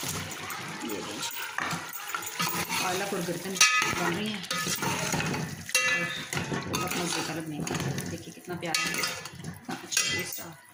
ये पालक और गर्दन बन रही हैं, और बहुत मज़े का लगने का। देखिए कितना प्यारा है, कितना अच्छा टेस्ट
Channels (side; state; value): both; identical; correlation 1.00